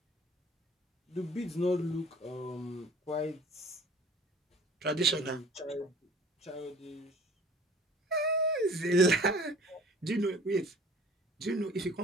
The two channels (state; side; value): normal; both; correlation 0.48